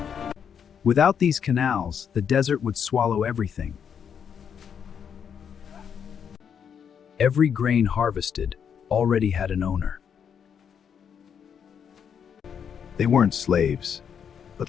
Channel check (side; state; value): right; quieter; 7.7 dB